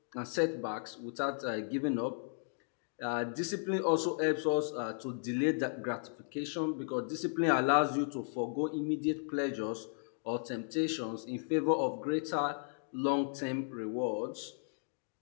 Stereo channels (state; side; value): silent; right; digital silence